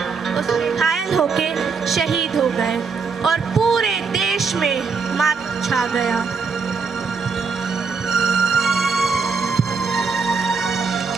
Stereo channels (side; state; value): left; quieter; 5.0 dB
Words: उसमें घायल होके शहीद हो गए और पूरे देश में मातम छा गया।